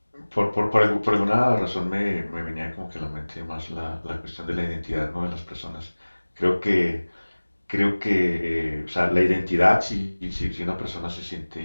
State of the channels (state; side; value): inverted; both; correlation -1.00